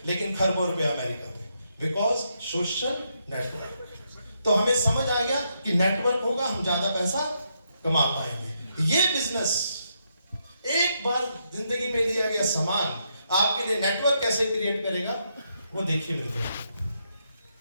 लेकिन खरबों रुपए अमेरिका में, बिकॉज सोशल नेटवर्क। तो हमें समझ आ गया कि नेटवर्क होगा हम ज्यादा पैसा कमा पाएंगे। ये बिजनेस एक बार जिंदगी में लिया गया सामान आपके लिए नेटवर्क कैसे क्रिएट करेगा वो देखिए मेरे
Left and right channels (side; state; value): both; inverted; correlation -0.79